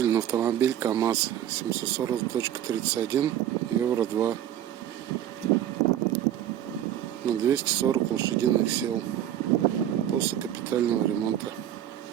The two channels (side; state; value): left; quieter; 11.3 dB